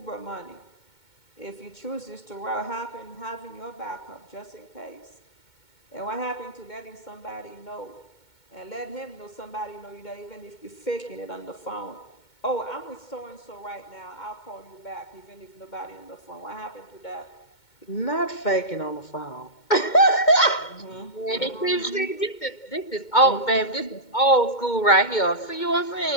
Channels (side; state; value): right; late; 2.2 ms